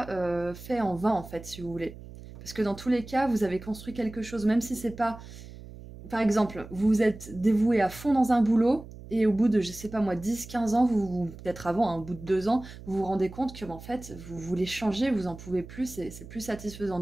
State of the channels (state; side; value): noise; right; hum, 15 dB below the sound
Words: fait en vain, en fait, si vous voulez. Parce que dans tous les cas, vous avez construit quelque chose, même si c'est pas... Par exemple, vous vous êtes dévoué à fond dans un boulot, et au bout de, je sais pas moi, 10-15 ans, peut-être avant, hein, au bout de 2 ans, vous vous rendez compte que, en fait, vous voulez changer, vous en pouvez plus, c'est plus satisfaisant